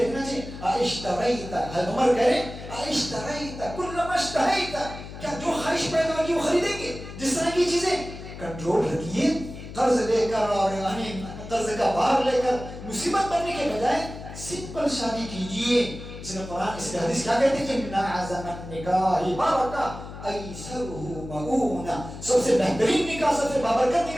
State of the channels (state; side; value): noise; left; hum, 12 dB below the sound